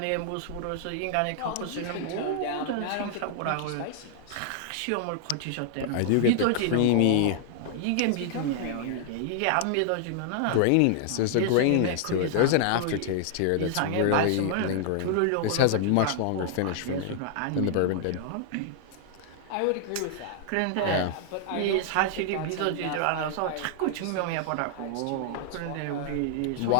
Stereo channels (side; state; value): both; different; correlation -0.01